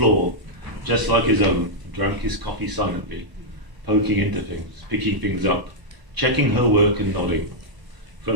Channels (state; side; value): late; left; 1.0 ms